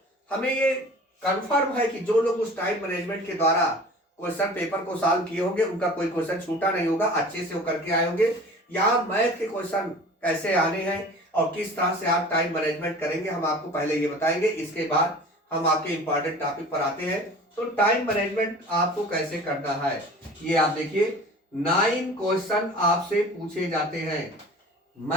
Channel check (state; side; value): normal; both; correlation 0.42